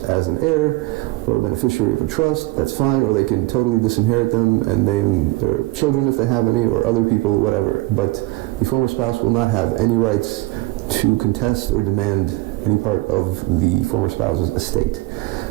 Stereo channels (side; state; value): left; quieter; 20.0 dB